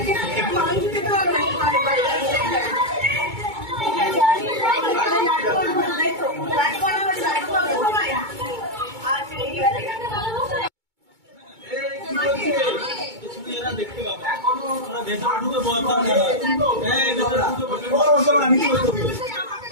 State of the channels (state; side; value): late; left; 2.2 ms